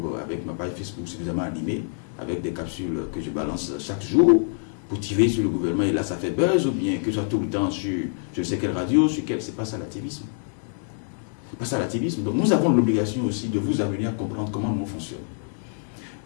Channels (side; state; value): right; silent; 61 dB below the other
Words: avec ma page Facebook suffisamment animée, avec des capsules que je balance chaque jour pour tirer sur le gouvernement, et là ça fait buzz, ou bien que je sois tout le temps sur je ne sais quelle radio, sur quelle, c'est pas ça l'activisme. C'est pas ça l'activisme. Donc nous avons l'obligation aussi de vous amener à comprendre comment nous fonctionne.